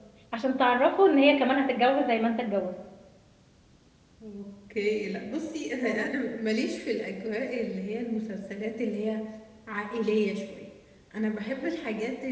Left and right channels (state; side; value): identical; both; correlation 1.00